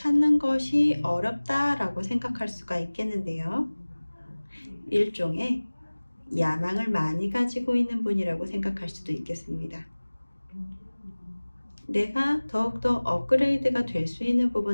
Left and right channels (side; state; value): both; inverted; correlation -1.00